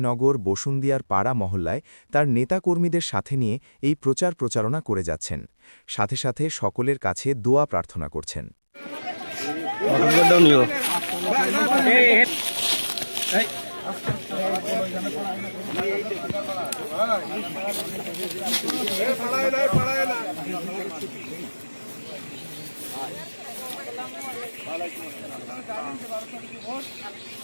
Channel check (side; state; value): both; inverted; correlation -1.00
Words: বসুন্দিয়ার পাড়া মহল্লায় তার নেতাকর্মীদের সাথে নিয়ে এই প্রচারণা করে যাচ্ছেন। সাথে সাথে সকলের কাছে দোয়া প্রার্থনা করছেন।